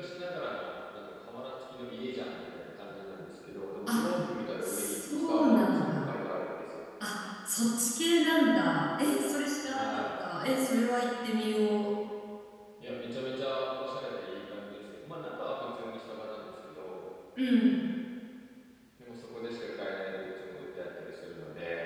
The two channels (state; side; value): identical; both; correlation 1.00